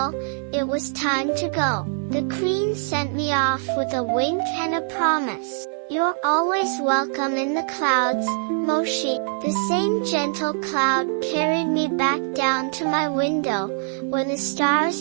it was time to go. The Queen sent me off with a wink and a promise. "You're always welcome in the clouds, Moshi." The same gentle cloud carried me back down to my window, where the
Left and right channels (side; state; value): left; silent; digital silence